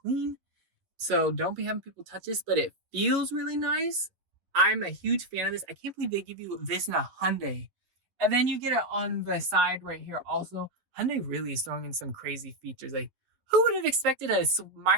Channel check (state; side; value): late; left; 11 ms